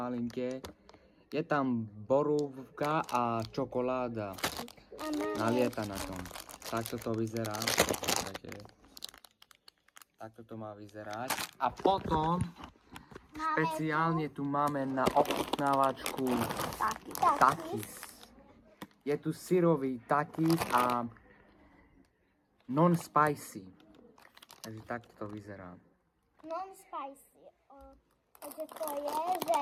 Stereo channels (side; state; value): both; identical; correlation 1.00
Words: Je tam borúvka a čokoláda nalieta na tom. Takto to vyzerá. Takto to má vyzerať. A potom špeciálne tu máme na ochutnávačku takis. Je tu syrový takis a non-spicy. Takže takto to vyzerá. Non-spicy. Takže to je, že